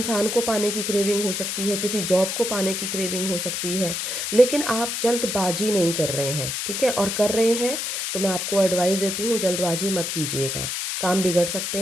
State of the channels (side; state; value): left; noise; hiss, 2 dB below the sound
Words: को पाने की क्रेविंग हो सकती है, किसी जॉब को पाने की क्रेविंग हो सकती है। लेकिन आप जल्दबाजी नहीं कर रहे हैं, ठीक है? और कर रहे हैं तो मैं आपको एडवाइस देती हूँ, जल्दबाजी मत कीजिएगा, काम बिगड़ सकते